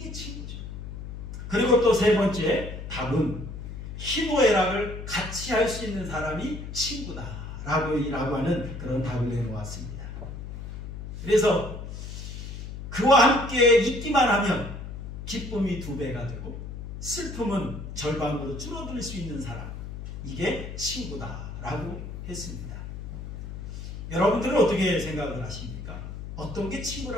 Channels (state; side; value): noise; left; hum, 8 dB below the sound